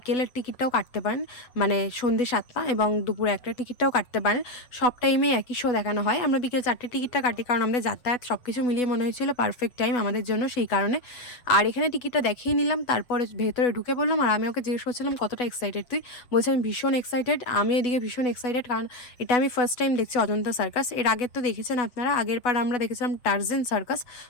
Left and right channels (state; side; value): late; right; 8.1 ms